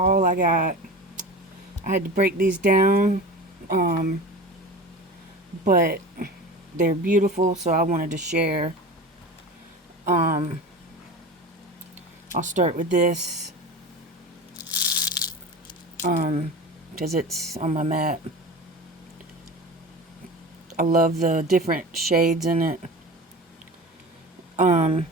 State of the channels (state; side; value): normal; both; correlation 0.32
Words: I got. I had to break these down, um, but they're beautiful, so I wanted to share. Um, I'll start with this because it's on my mat. I love the different shades in it.